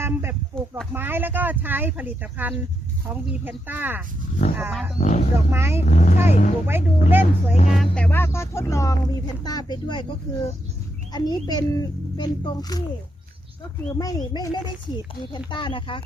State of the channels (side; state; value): both; normal; correlation 0.82